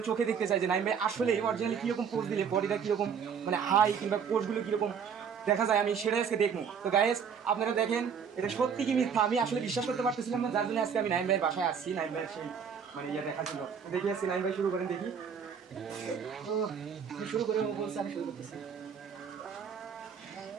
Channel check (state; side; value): quieter; left; 6.9 dB